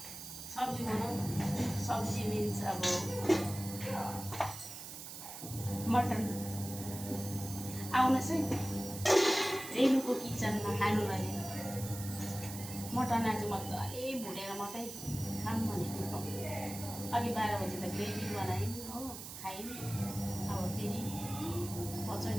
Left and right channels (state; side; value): noise; right; hiss, 10 dB below the sound